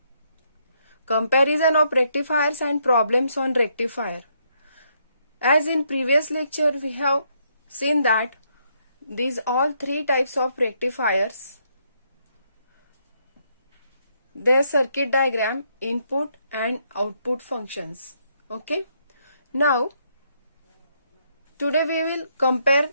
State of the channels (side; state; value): both; inverted; correlation -0.74